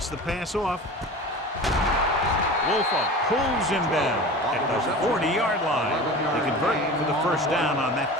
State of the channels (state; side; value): normal; both; correlation 0.35